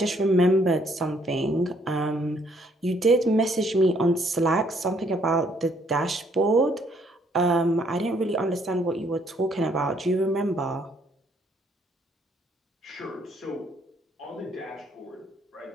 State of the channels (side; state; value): both; normal; correlation 0.67